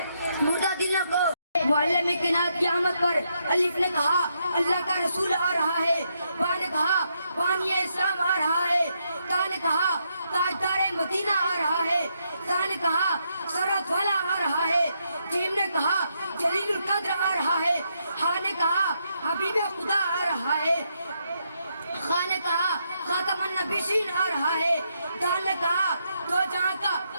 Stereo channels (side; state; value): both; inverted; correlation -0.79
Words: مردہ دلوں کو معلم کائنات کی آمد پر الف نے کہا اللہ کا رسول آ رہا ہے، با نے کہا بانی اسلام آ رہا ہے، تا نے کہا تاجدار مدینہ آ رہا ہے، تا نے کہا سرحد والا آ رہا ہے، جیم نے کہا جلیل القدر آ رہا ہے، ہا نے کہا حبیب خدا آ رہا ہے، خا نے کہا خاتم النبیین آ رہا ہے، دال نے کہا دو جہاں کا